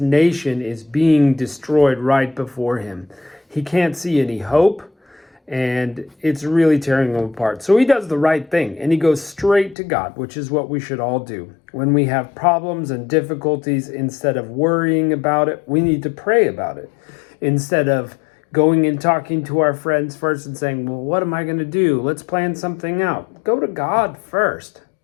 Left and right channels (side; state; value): right; drops out; at 9.8 s